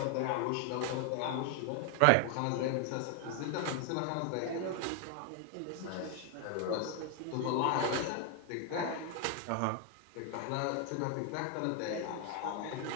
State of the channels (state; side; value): different; both; correlation 0.00